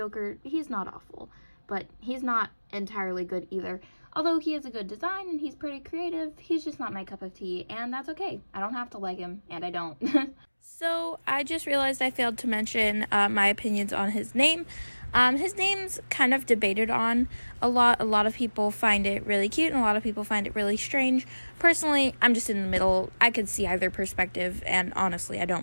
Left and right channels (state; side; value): inverted; both; correlation -1.00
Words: He's not awful, but he's not entirely good either. Although he has a good design and he's pretty creative, he's just not my cup of tea, and that's okay. I don't have to like him, and I don't. So I just realized I failed to mention my opinions on his name. His name's kind of debated on a lot. A lot of people find it really cute, and a lot of people find it really strange. Personally, I'm just in the middle. I could see either perspective, and honestly, I